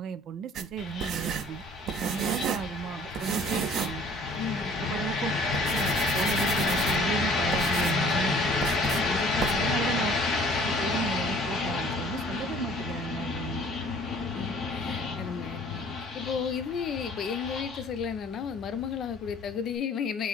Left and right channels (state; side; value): normal; both; correlation 0.53